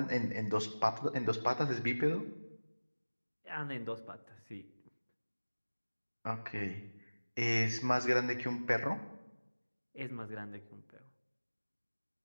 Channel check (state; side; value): inverted; both; correlation -1.00